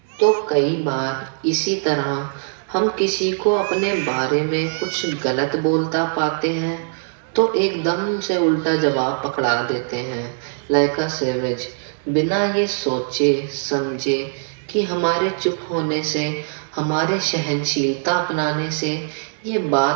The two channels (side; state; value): left; silent; digital silence